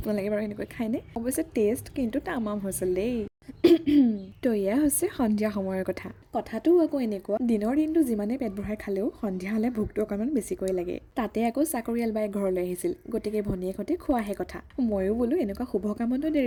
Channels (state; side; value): identical; both; correlation 1.00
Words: বাৰু এনেকৈ খায়নে? অৱশ্যে টেষ্ট কিন্তু তামাম হৈছিল দেই। তো এয়া হৈছে সন্ধিয়া সময়ৰ কথা। কথাটো আকৌ এনেকুৱা, দিনৰ দিনটো যিমানে পেট ভৰাই খালেও সন্ধিয়া হ'লে ভোকটো অকণমান বেছিকৈ লাগে। তাতে আকৌ চাকৰিয়াল বাই ঘৰলৈ আহিছিল, গতিকে ভনীয়েকহঁতে খোৱাহে কথা। ময়ো বোলো এনেকুৱা শুভ কামতো